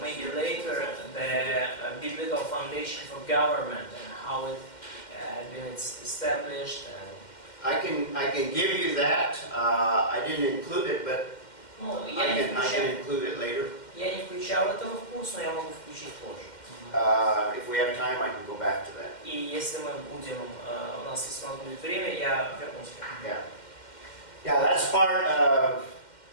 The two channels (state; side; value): late; right; 2.1 ms